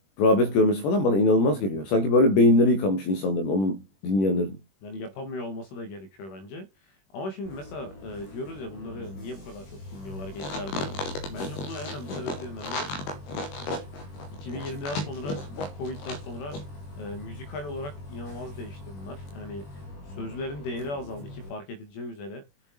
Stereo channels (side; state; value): right; late; 21 ms